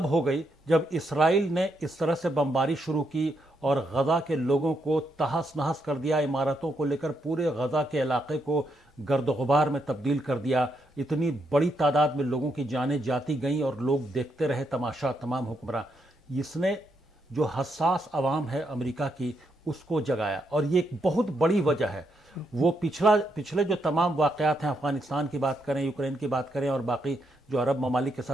ہو گئی جب اسرائیل نے اس طرح سے بمباری شروع کی اور غزہ کے لوگوں کو تہس نہس کر دیا، عمارتوں کو لے کر پورے غزہ کے علاقے کو گرد و غبار میں تبدیل کر دیا. اتنی بڑی تعداد میں لوگوں کی جانیں جاتی گئیں اور لوگ دیکھتے رہے تماشا، تمام حکمراں. اس نے جو حساس عوام ہے امریکہ کی اس کو جگایا، اور یہ ایک بہت بڑی وجہ ہے. وہ پچھلے جو تمام واقعات ہیں، افغانستان کی بات کریں، یوکرین کی بات کریں، اور باقی جو عرب ممالک کے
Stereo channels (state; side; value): normal; both; correlation 0.79